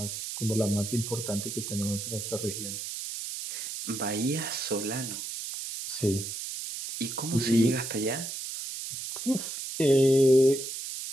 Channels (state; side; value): noise; right; hiss, 6 dB below the sound